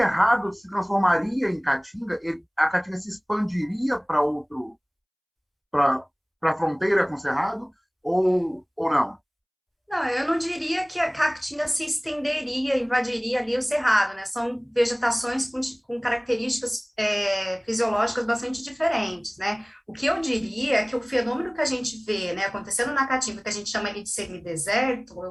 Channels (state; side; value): identical; both; correlation 1.00